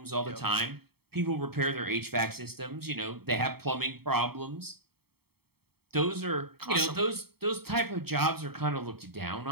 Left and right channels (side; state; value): left; late; 0.96 ms